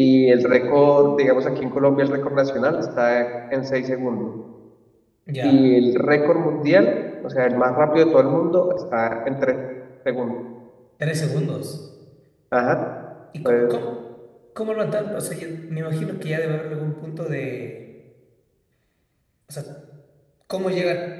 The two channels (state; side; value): identical; both; correlation 1.00